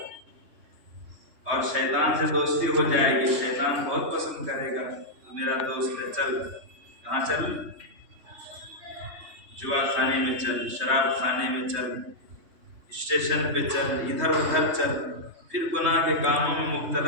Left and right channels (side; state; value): left; late; 3.2 ms